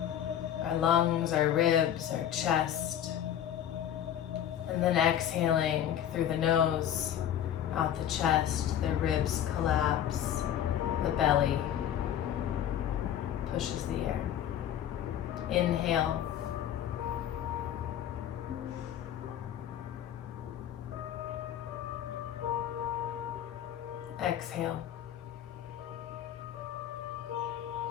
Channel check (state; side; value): quieter; right; 10.5 dB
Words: our lungs, our ribs, our chest. And then exhaling through the nose, out the chest, the ribs collapse, the belly pushes the air. Inhale. Exhale.